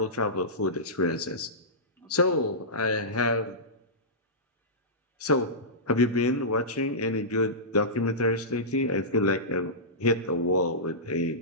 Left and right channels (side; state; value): both; normal; correlation -0.17